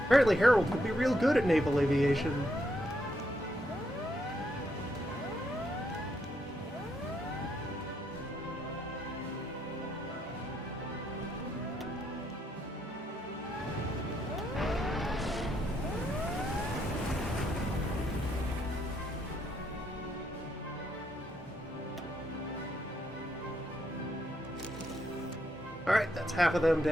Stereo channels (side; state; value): both; normal; correlation 0.77